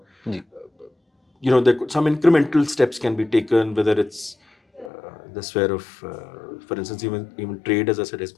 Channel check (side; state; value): right; drops out; at 4.9 s